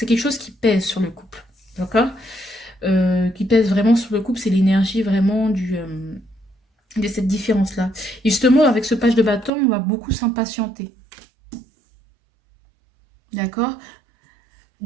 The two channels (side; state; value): left; drops out; at 9.5 s